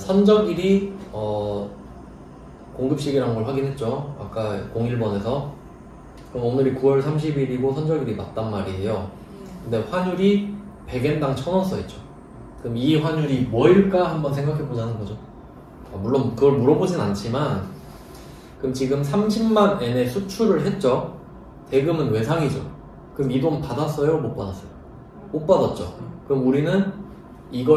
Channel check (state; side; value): identical; both; correlation 1.00